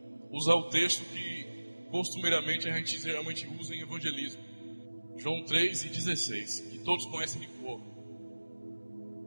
usar o texto que costumeiramente a gente geralmente usa em evangelismo. João 3:16, que todos conhecem de cor.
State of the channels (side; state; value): both; inverted; correlation -1.00